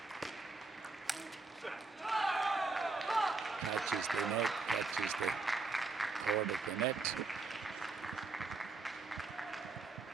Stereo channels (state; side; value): quieter; left; 3.8 dB